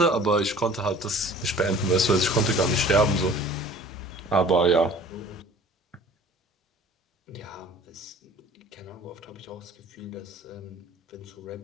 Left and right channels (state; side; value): normal; both; correlation 0.47